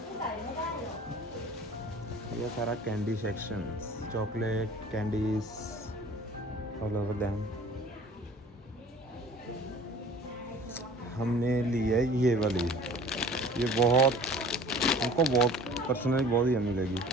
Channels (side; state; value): both; normal; correlation 0.47